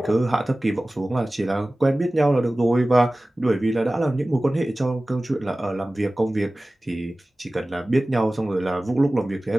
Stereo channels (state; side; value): normal; both; correlation 0.97